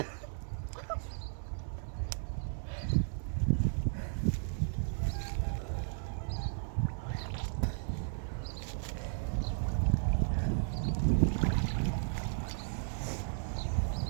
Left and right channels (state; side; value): silent; left; 55 dB below the other